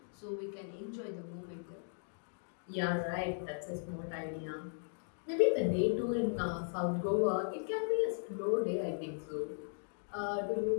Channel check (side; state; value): right; silent; digital silence